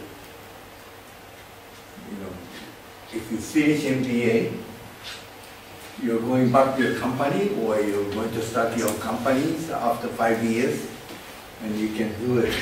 If you finish MBA, you're going back to your company, or you're going to start your companies after 5 years, and you can do it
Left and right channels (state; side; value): identical; both; correlation 1.00